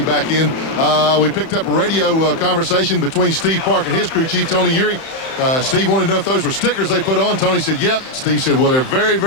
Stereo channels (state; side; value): late; right; 31 ms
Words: back in. We picked up a radio conversation between Steve Park and his crew chief, Tony Urey. Steve wanted to know if those were stickers they put on. Tony said, yep. Steve said, well, they're very,